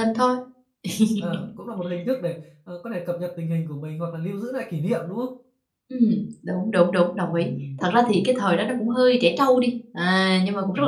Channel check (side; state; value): both; identical; correlation 1.00